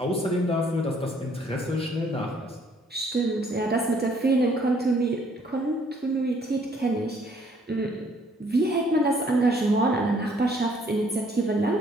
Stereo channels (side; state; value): both; normal; correlation 0.63